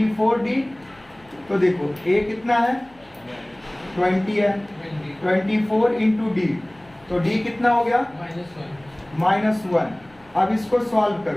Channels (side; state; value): left; noise; hum, 28 dB below the sound